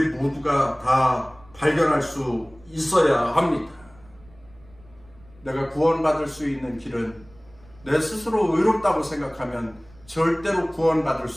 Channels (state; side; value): noise; right; rumble, 26 dB below the sound